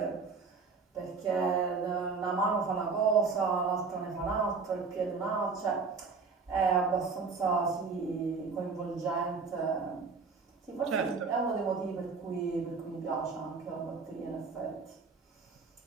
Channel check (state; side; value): quieter; left; 4.7 dB